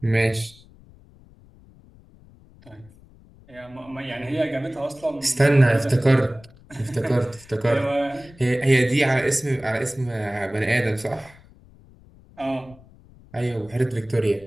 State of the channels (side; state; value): left; noise; rumble, 25 dB below the sound